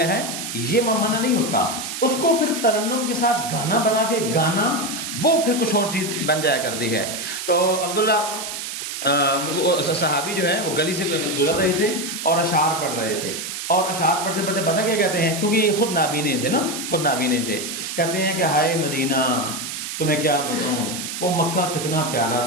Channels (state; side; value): noise; right; hiss, 6 dB below the sound